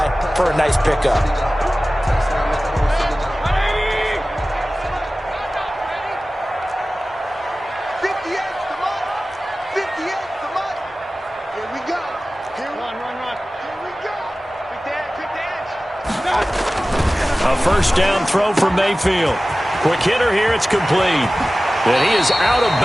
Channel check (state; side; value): normal; both; correlation 0.97